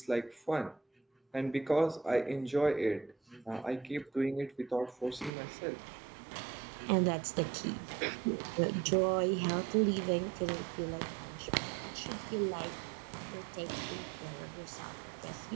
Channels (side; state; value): left; drops out; at 5.3 s